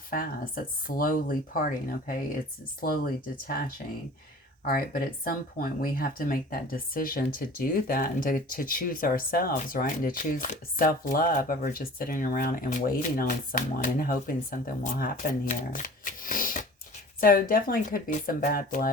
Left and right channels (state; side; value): normal; both; correlation 0.43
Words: it's slowly parting. Okay, it's slowly detaching. All right, but at some point we have to make that decision to do that and to choose ourselves, right? And to choose self-love over just sitting around and waiting on someone and hoping something will happen here. So definitely could be some bad